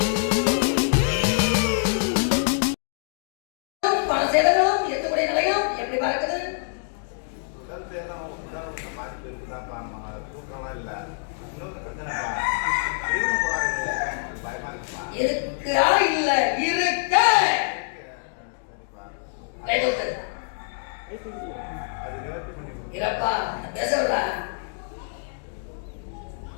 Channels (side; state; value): right; silent; digital silence